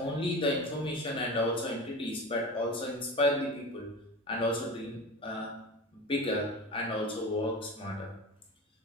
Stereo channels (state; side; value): normal; both; correlation 0.30